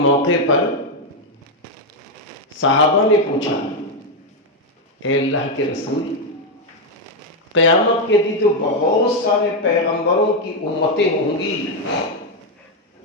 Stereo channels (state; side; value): normal; both; correlation 0.04